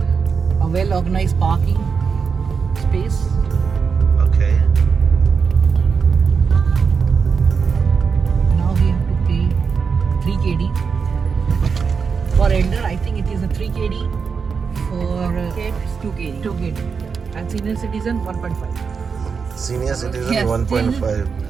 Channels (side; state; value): left; quieter; 5.7 dB